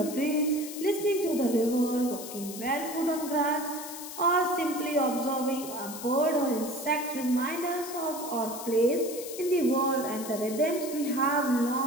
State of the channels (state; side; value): noise; left; hiss, 11 dB below the sound